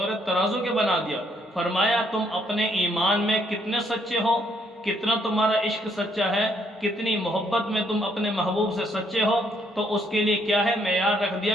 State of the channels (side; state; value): both; normal; correlation 0.70